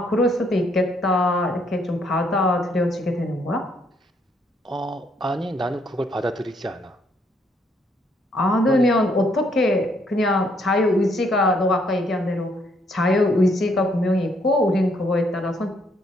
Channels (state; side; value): normal; both; correlation 0.70